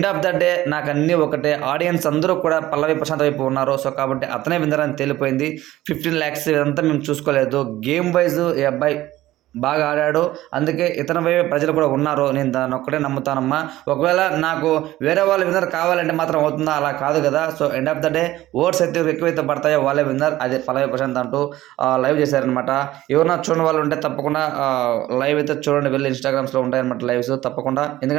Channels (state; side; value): quieter; left; 15.7 dB